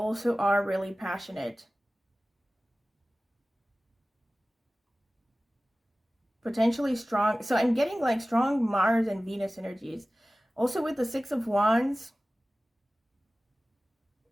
are really passionate. Potentially strong. So I'm getting like strong Mars and Venus energies. Also with the 6 of Wands,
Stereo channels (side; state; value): both; normal; correlation 0.97